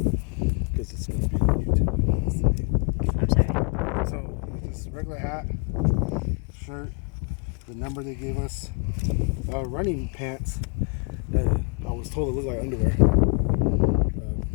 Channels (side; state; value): right; quieter; 37.3 dB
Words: it's going to be on YouTube. I'm sorry. So, just regular hat, shirt, the number they gave us, running pants that I was told it looked like underwear,